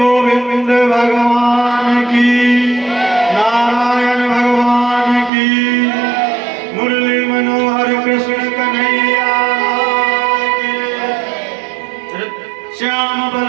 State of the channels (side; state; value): left; drops out; at 5.3 s